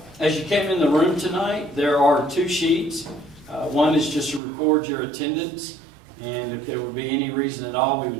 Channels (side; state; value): left; drops out; at 4.4 s